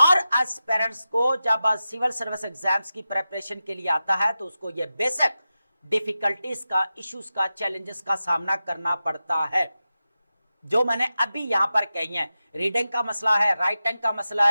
एस्पिरेंट्स को जब सिविल सर्विस एग्जाम्स की प्रिपरेशन के लिए आता है तो उसको ये बेसिक डिफिकल्टीज का, इश्यूज का, चैलेंजेस का सामना करना पड़ता है, जो मैंने अभी यहां पर कही है। रीडिंग का मसला है, राइटिंग का मसला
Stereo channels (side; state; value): both; inverted; correlation -0.93